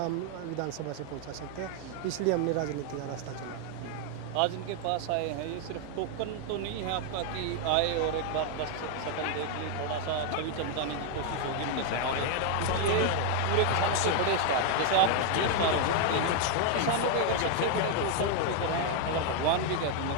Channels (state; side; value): different; both; correlation 0.00